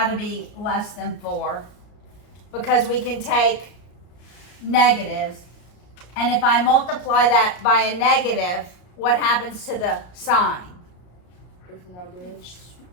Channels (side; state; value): right; late; 34 ms